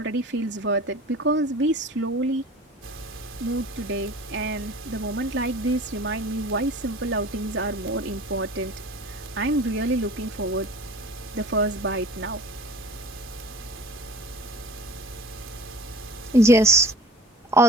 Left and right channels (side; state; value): both; normal; correlation 0.42